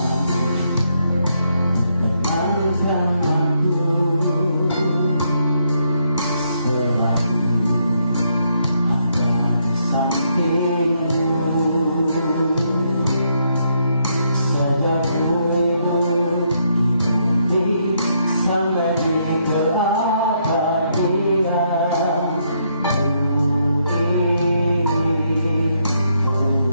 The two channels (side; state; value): both; inverted; correlation -0.75